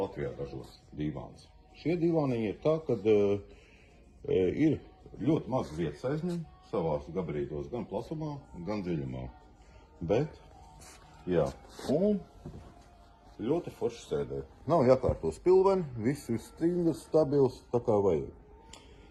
ražos divāns. Šie divāniņi ir tā, kad ir ļoti maz vietas aizņem savās gabarītos, gan plasumā, gan dziļumā. Bet, jā, un ļoti forši sēdē. Nav jākārto spilveni, viss ir stingrs, stabils, tā kā vajag.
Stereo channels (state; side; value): identical; both; correlation 1.00